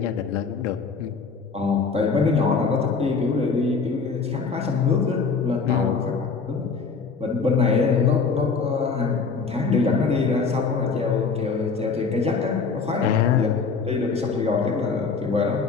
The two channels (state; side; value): quieter; right; 4.9 dB